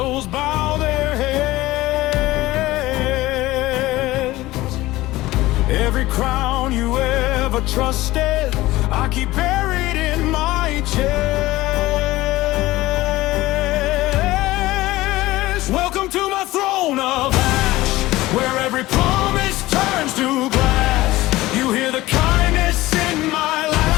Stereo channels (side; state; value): right; quieter; 17.9 dB